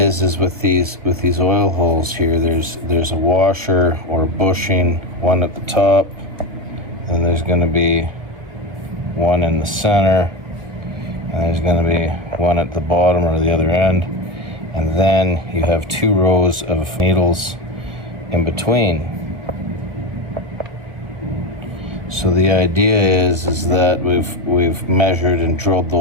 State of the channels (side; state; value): left; late; 1.5 ms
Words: is with these oil holes here, there's a washer or a bushing, one at the top, and there's going to be one in the center, and there's going to be one at the bottom or the other end, and then you have two rows of needles in between. So the idea is that we've measured and drilled